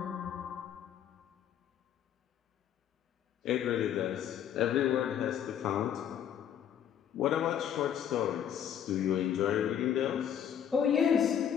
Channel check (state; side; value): quieter; right; 9.4 dB